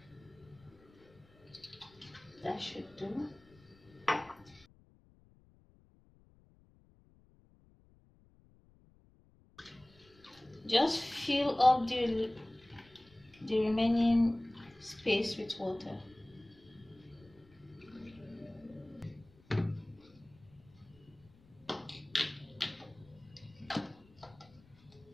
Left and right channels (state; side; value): noise; left; rumble, 27 dB below the sound